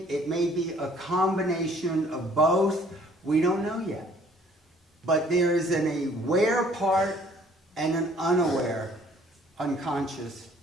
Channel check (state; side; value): normal; both; correlation 0.57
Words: it may be a combination of both. We don't know yet. But there is an aware part and an unaware, unconscious